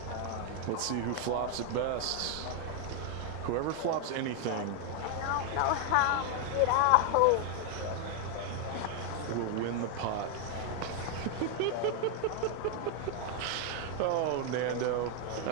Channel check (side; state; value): both; different; correlation 0.01